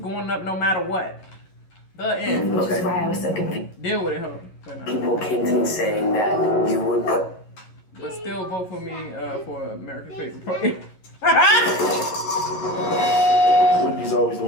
up no matter what. The end. Which is why I was so confused. Deal with it, ho. People came to me saying that you would put. But still vote for me for America's favorite player. Whitney's always the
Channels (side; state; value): right; late; 11 ms